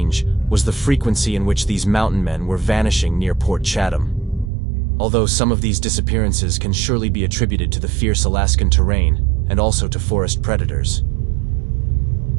was the frequency in which these mountain men were vanishing near Port Chatham. Although some of these disappearances can surely be attributed to the fierce Alaskan terrain and also to forest predators.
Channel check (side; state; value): left; drops out; at 4.5 s